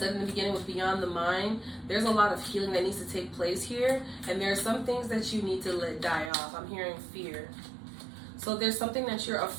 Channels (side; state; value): left; drops out; at 6.3 s